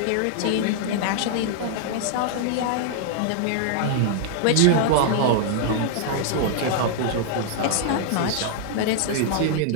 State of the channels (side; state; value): both; different; correlation -0.01